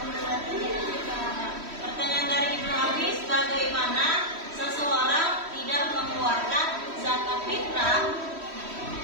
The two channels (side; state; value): left; late; 3.1 ms